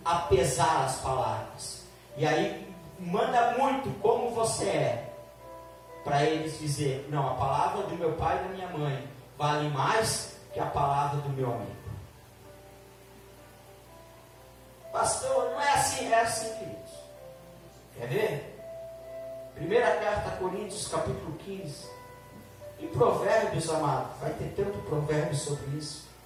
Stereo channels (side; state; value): both; identical; correlation 1.00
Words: a pesar as palavras, e aí manda muito como você é, para eles dizer, não, a palavra do meu pai e da minha mãe vale mais que a palavra do meu amigo. Pastor, não é assim, é assim, queridos. Quer ver? Primeira carta a Coríntios, capítulo 15. Em Provérbios, amado, vai ter tanto provérbio sobre isso.